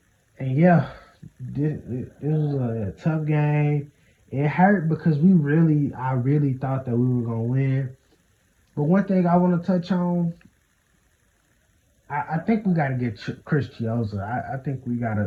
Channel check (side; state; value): both; identical; correlation 1.00